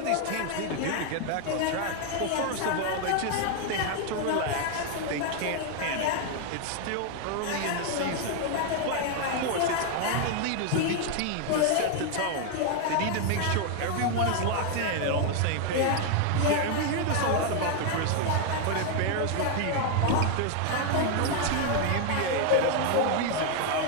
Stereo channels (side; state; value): both; different; correlation 0.01